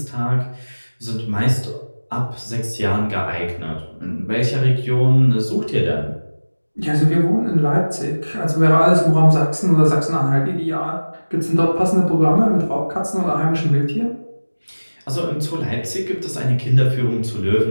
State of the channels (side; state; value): both; inverted; correlation -1.00